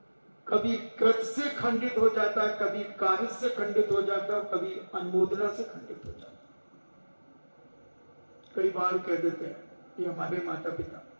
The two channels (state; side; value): inverted; both; correlation -1.00